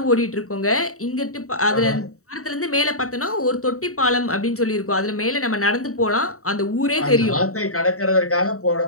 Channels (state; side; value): late; right; 0.64 ms